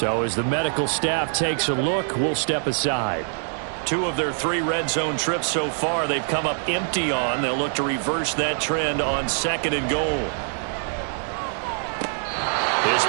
as the medical staff takes a look, we'll step aside. 2 of their 3 red zone trips so far, they've come up empty on. They'll look to reverse that trend on second and goal. His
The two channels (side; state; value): left; silent; 59 dB below the other